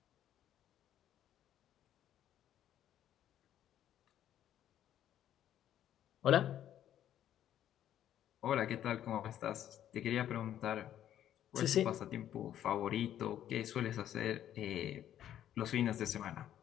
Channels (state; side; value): quieter; right; 11.2 dB